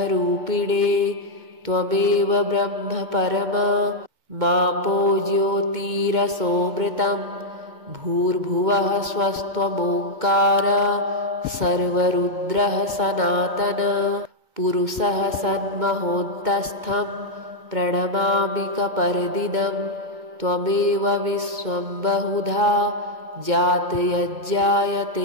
त्वमेव ब्रह्म परम मापो ज्योतिरसोमृतं भूर्भुवः स्वस्त्वमोङ्कार सर्वरुद्रः सनातन पुरुषः सन्महोन्तस्थं प्रणमामि कपर्दिनं त्वमेव विश्वं बहुधा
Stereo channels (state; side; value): late; left; 2.2 ms